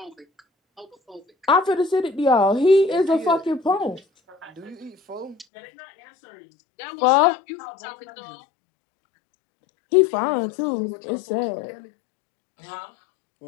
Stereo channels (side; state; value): right; drops out; at 5.5 s